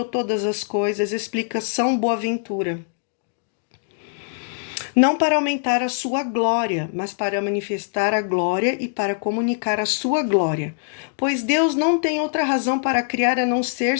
todas as coisas, explica São Boaventura. Não para aumentar a sua glória, mas para manifestar a glória e para comunicar a sua glória. Pois Deus não tem outra razão para criar a não ser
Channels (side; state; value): right; silent; digital silence